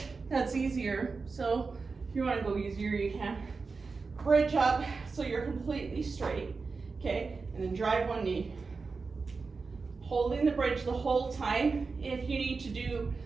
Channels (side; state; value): left; quieter; 4.4 dB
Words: That's easier. So if you want to go easier, you can. Bridge up so you're completely straight. Okay, and then drive one knee. Holding the bridge the whole time. If you need to do